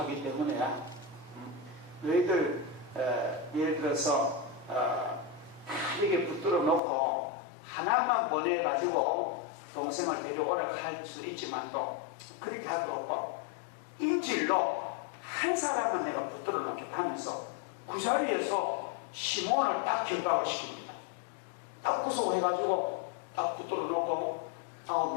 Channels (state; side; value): drops out; right; at 6.8 s